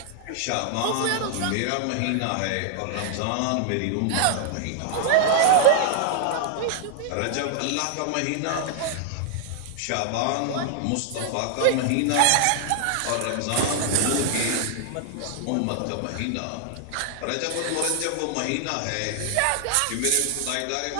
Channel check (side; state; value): both; different; correlation 0.00